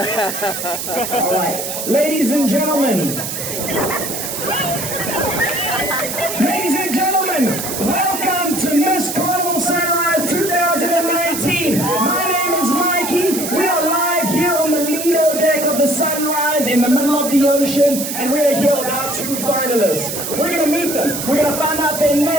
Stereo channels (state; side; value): noise; right; hiss, 5 dB below the sound